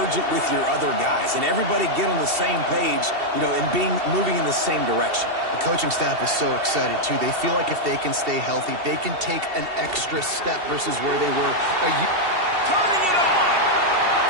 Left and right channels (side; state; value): left; late; 2.7 ms